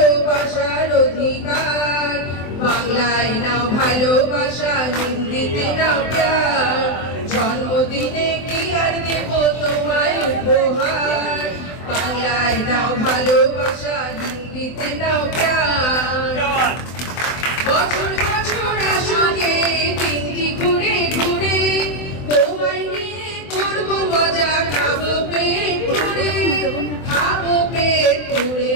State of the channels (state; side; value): late; right; 24 ms